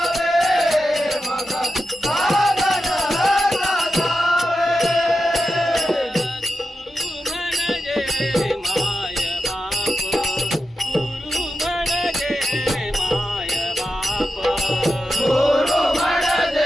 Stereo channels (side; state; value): both; normal; correlation 0.89